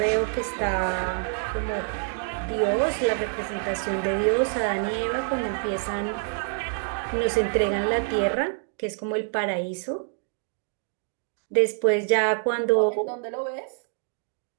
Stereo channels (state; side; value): silent; left; 59 dB below the other